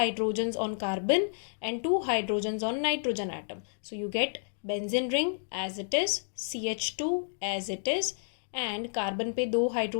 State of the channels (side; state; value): right; silent; digital silence